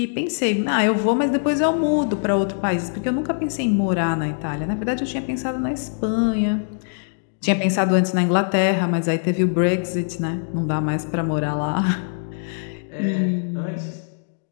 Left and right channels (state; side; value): silent; right; digital silence